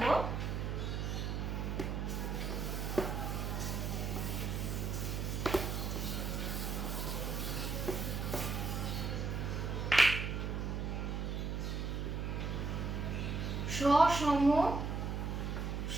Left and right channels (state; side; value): noise; right; hum, 1 dB below the sound